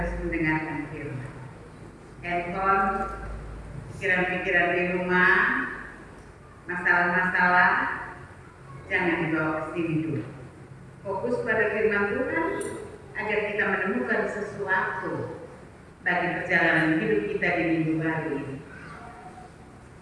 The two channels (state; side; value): identical; both; correlation 1.00